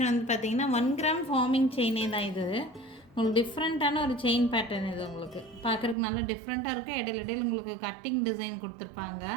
வந்து பார்த்திங்கன்னா 1 கிராம் ஃபார்மிங் செயினே தான். இது உங்களுக்கு டிஃப்ரெண்ட்டான ஒரு செயின் பேட்டர்ன். இது உங்களுக்கு பார்க்குறதுக்கு நல்லா டிஃப்ரெண்ட்டாக இருக்குது. இடையில உங்களுக்கு கட்டிங் டிசைன் கொடுத்துருப்பாங்க.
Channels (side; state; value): left; drops out; at 6.0 s